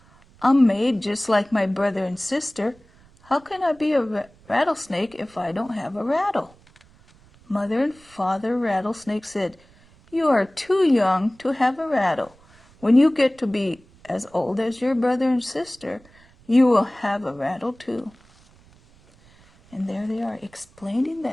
I'm made just like my brother and sister. How can I be a rattlesnake if I don't have a rattle?" Mother and Father Rattlesnake said, "You are too young to have a rattle. When you get to be as old as your brother and sister, you will have a rattle too." And there they are explaining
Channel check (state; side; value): noise; right; rumble, 28 dB below the sound